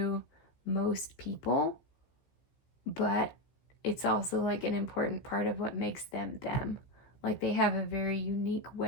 most people, but it's also like an important part of what makes them them. Like, they have a very unique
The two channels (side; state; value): right; late; 15 ms